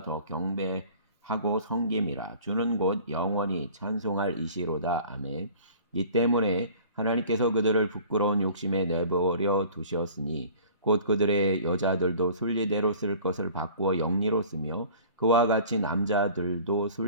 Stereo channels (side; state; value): both; inverted; correlation -0.46